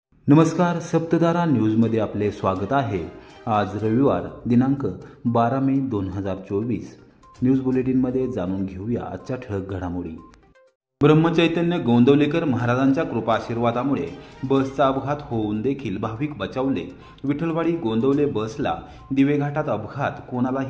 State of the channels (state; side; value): identical; both; correlation 1.00